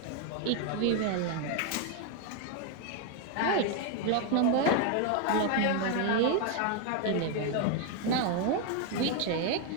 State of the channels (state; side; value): different; both; correlation 0.01